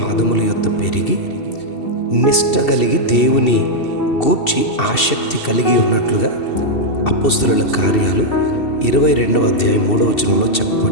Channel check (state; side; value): late; right; 2.7 ms